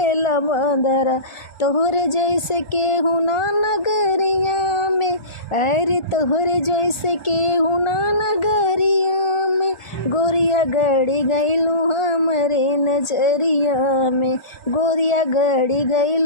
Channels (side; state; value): right; late; 1.4 ms